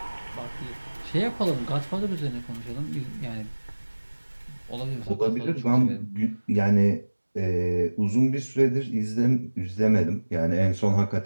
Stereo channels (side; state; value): both; inverted; correlation -1.00